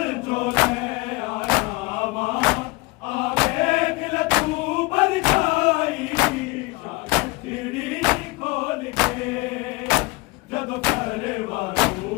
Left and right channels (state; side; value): quieter; right; 24.4 dB